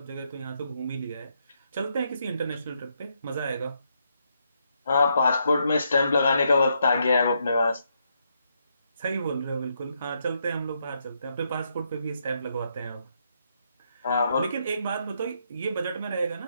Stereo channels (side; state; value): both; inverted; correlation -0.78